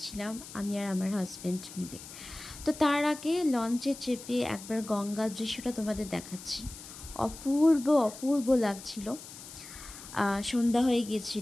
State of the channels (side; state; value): left; noise; hiss, 14 dB below the sound